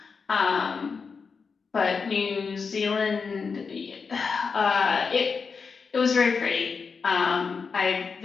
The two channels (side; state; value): right; quieter; 5.3 dB